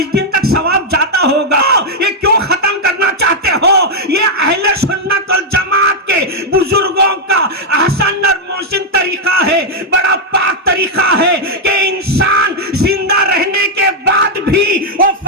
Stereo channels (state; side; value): normal; both; correlation -0.02